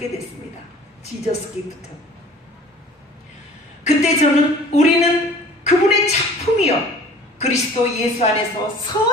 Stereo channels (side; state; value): both; normal; correlation 0.48